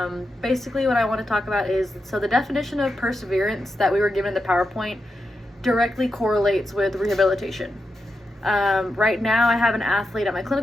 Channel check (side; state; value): both; normal; correlation 0.87